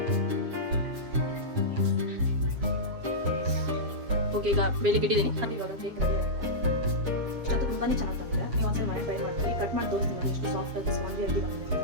ಓಕೆ, ಈಗ ಬೇಲಿಗೆ ಇಟ್ಟಿದ್ದೀನಿ. ಅದು ಇವಾಗ ಕೇಕ್ ರೆಡಿ ಆಗಿದೆ. ಇಷ್ಟಂತೂ ತುಂಬಾ ಚೆನ್ನಾಗಿ ಬಂದಿದೆ. ನೀವು ಒಂದ್ಸಲ ಮನೆ ಟ್ರೈ ಮಾಡಿ. ಕಟ್ ಮಾಡಿ ತೋರಿಸ್ತೀನಿ ನೋಡಿ ಎಷ್ಟು ಸಾಫ್ಟ್ ಆಗಿ ಸ್ಪಾಂಜಿ ಆಗಿ ಬಂದಿದೆ ಅಂತ.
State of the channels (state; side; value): late; left; 7.5 ms